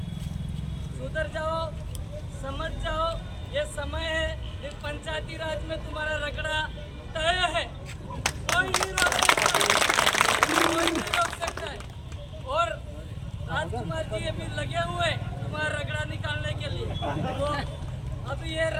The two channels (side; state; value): both; identical; correlation 1.00